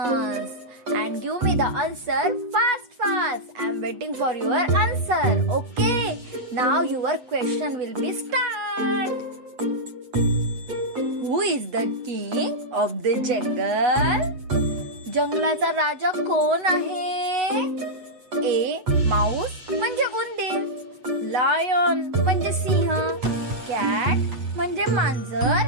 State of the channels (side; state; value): left; late; 8.0 ms